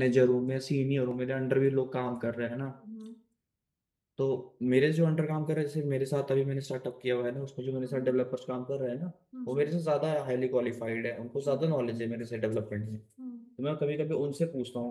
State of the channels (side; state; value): both; identical; correlation 1.00